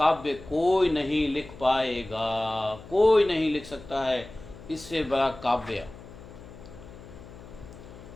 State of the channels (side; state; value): left; noise; hum, 17 dB below the sound